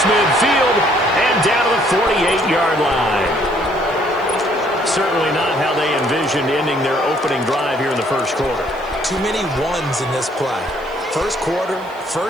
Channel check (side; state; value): right; noise; hiss, 29 dB below the sound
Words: midfield and down to the 48-yard line. Certainly not how they envisioned ending their opening drive here in the first quarter. Too many ones in this play. First quarter,